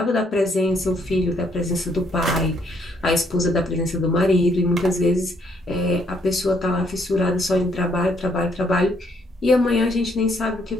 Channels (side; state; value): both; normal; correlation 0.69